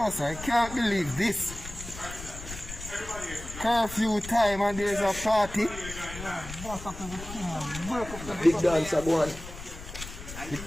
sir, I can't believe this. Curfew time and there's a party. Big dancer go on. You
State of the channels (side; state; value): left; noise; rumble, 12 dB below the sound